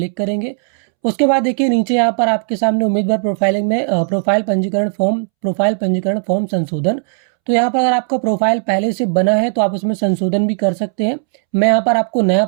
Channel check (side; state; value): left; silent; 69 dB below the other